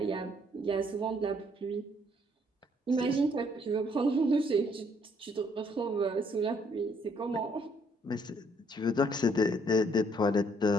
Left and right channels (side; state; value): both; normal; correlation 0.67